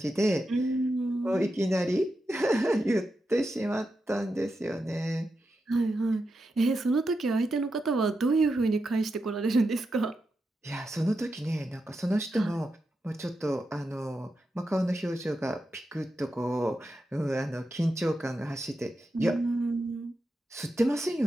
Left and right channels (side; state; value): both; normal; correlation 0.88